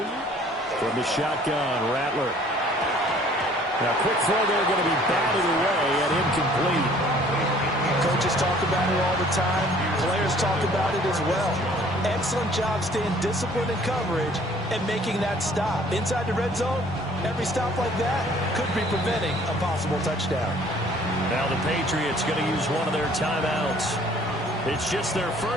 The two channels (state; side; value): normal; both; correlation 0.55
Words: From the shotgun, Rattler. Now, quick throw there, going to be batted away and incomplete. Coaches talk about it all the time. Players talk about it as well. Excellent job staying disciplined in coverage and making that stop. Inside the red zone, every stop like that could be preventing a possible touchdown. Now the Patriots going to use one of their timeouts. It's just their